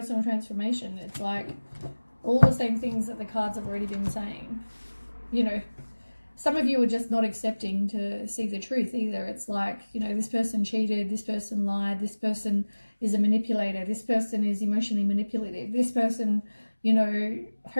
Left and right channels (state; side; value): inverted; both; correlation -1.00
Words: transformation. It's like all the same things that the cards have already been saying. Some of you are just not accepting to see the truth either. It's like, this person cheated, this person lied, this person is a manipulator, this person is emotionally manipulative, this person,